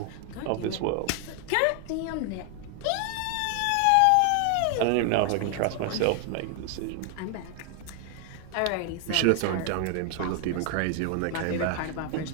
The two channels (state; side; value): different; both; correlation 0.01